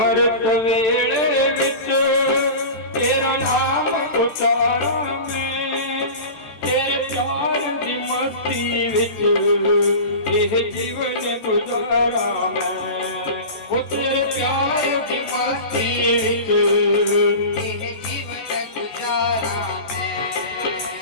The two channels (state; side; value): late; right; 14 ms